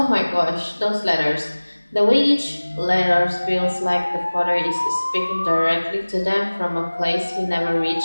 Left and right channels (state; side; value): inverted; both; correlation -1.00